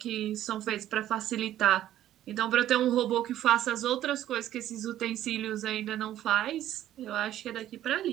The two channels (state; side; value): quieter; left; 12.6 dB